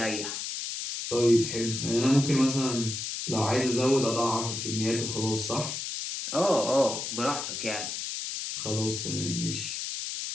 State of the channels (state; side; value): noise; left; hiss, 5 dB below the sound